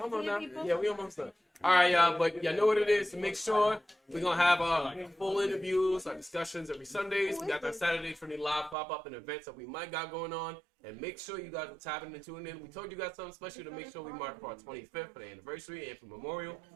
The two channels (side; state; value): left; drops out; at 8.8 s